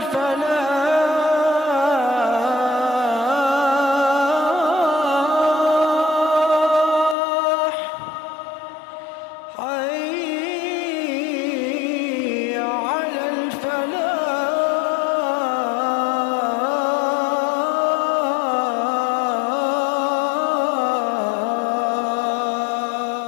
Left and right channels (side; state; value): right; drops out; at 7.2 s